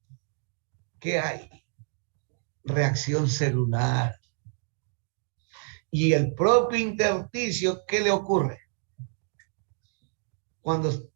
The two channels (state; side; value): silent; left; 59 dB below the other